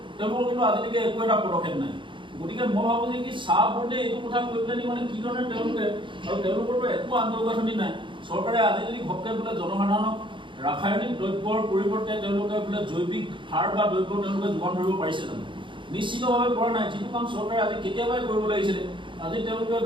তেওঁলোকৰ কিন্তু আজিলৈকে একো এটা পদক্ষেপ নাই। গতিকে মই ভাবোঁ যে কি চাহ বোৰ্ডে এইটো কথা কৈ পেলানি মানে কি ধৰণে তেওঁলোকে, আৰু তেওঁলোকৰতো একো আন্তঃগাঁথনি নাই, চৰকাৰে আজি যদি ঘপকৈ বোলে জনসাধাৰণক ৰাসায়নিক দ্ৰব্যৰ পৰিৱৰ্তে তেওঁলোকে বোলে জৈৱিক সাৰ বা দ্ৰব্য তেওঁলোকে যোগান ধৰিব পাৰিছে জানো? নিশ্চিতভাৱে পৰা নাই, যিটো কাম চৰকাৰে আজি কেতিয়াবাই কৰিব লাগিছিলে। আজি তেওঁলোকে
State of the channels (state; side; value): late; left; 0.24 ms